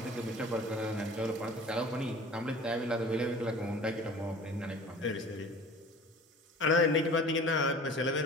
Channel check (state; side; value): normal; both; correlation 0.43